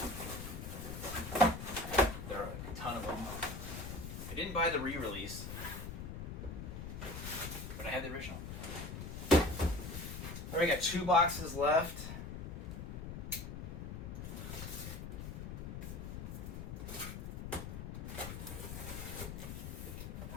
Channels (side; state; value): left; noise; rumble, 7 dB below the sound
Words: there are a ton of them. I didn't buy the re-release, but I have the original. All right, got 2 boxes left.